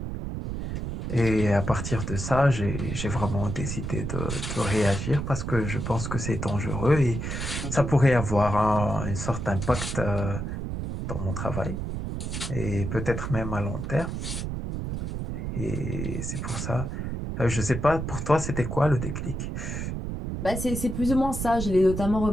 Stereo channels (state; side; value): noise; right; rumble, 4 dB below the sound